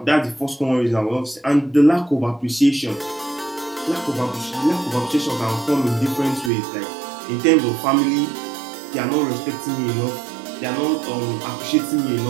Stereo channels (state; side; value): drops out; left; at 6.5 s